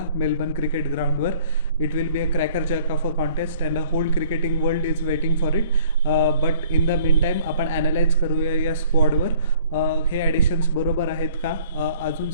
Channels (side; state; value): both; inverted; correlation -0.56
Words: मेलबर्न क्रिकेट ग्राउंडवर. It will be a cracker jack of a contest and a whole cricketing world is waiting for it. But in the mean time आपण analyse करूया या स्क्वॉडवर. हे ॲडिशन्स बरोबर आहेत का, अजून